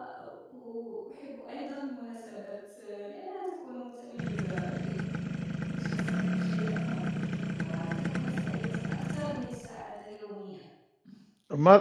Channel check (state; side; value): identical; both; correlation 1.00